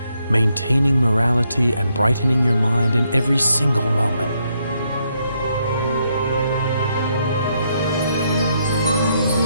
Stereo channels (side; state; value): both; inverted; correlation -0.77